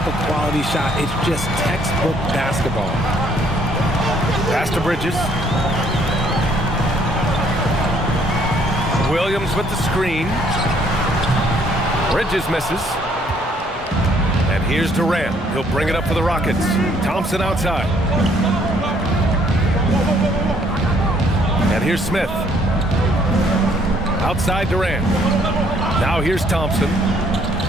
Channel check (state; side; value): normal; both; correlation 0.64